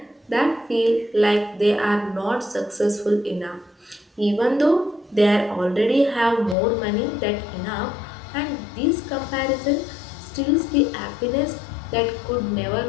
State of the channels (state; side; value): drops out; right; at 6.6 s